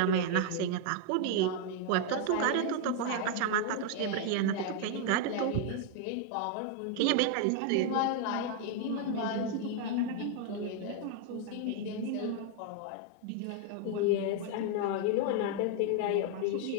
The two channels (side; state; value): both; different; correlation 0.00